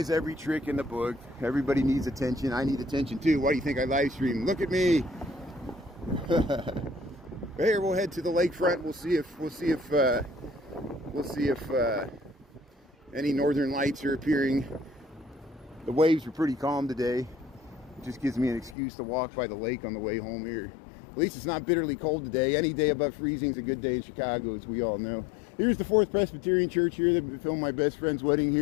every trick in the book. Everybody needs attention. I need attention too. Why do you think I live stream? Look at me. Here, we'll head to the lakefront. We'll see if any northern lights are appearing. The waves are pretty calm today. It just gives me an excuse to walk by the lake on the way home here. At least it's not bitterly cold today. Any day above freezing is a good day in Chicago, as we all know. Here's the 4th Presbyterian Church here. They filmed my best friend's wedding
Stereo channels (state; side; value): drops out; right; at 18.8 s